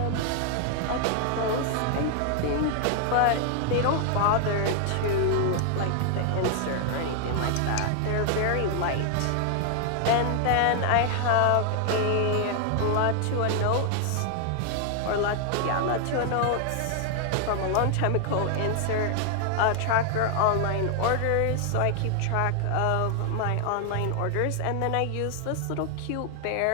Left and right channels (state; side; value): different; both; correlation 0.00